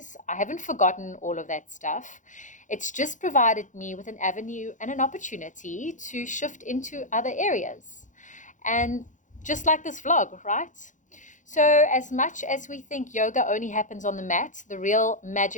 I haven't forgotten all of that stuff. It's just provided me with an avenue and an opportunity to shift into other areas. And just like this vlog, right? So as much as we think yoga only happens on the mat, the real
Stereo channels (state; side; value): late; right; 0.37 ms